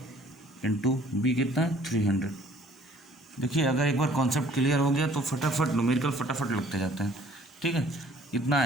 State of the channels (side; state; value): both; normal; correlation 0.56